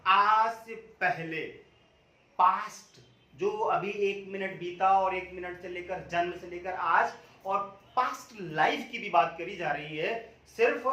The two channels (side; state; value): both; identical; correlation 1.00